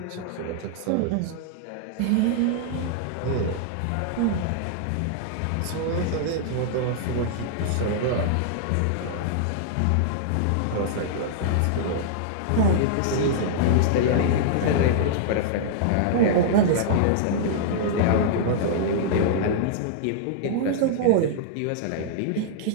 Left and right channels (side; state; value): both; different; correlation -0.01